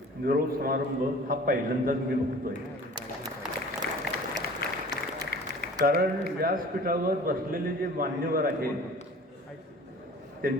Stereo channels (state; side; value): normal; both; correlation 0.45